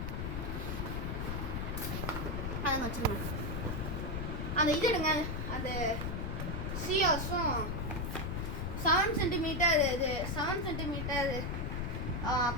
அதை வச்சுருங்க. அந்த இது எடுங்க, அந்த சிஆர்ஸும் 7 சென்டிமீட்டர்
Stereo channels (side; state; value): left; noise; rumble, 2 dB below the sound